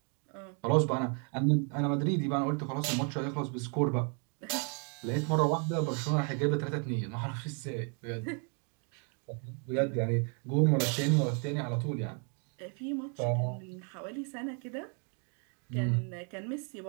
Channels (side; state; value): left; quieter; 39.0 dB